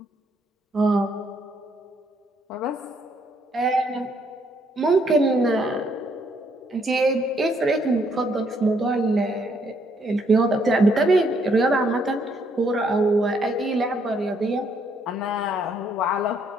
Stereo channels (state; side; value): normal; both; correlation 0.70